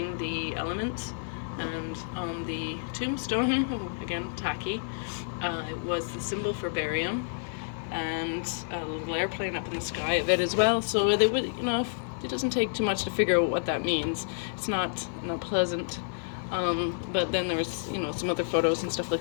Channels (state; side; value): silent; right; 58 dB below the other